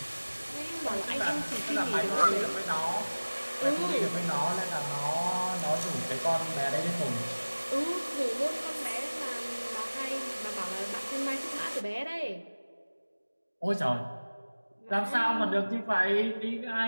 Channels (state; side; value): inverted; both; correlation -1.00